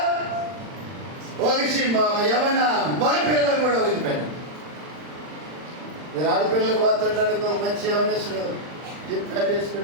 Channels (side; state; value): left; late; 40 ms